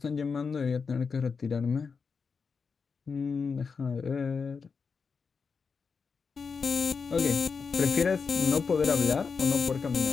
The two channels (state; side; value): quieter; right; 5.3 dB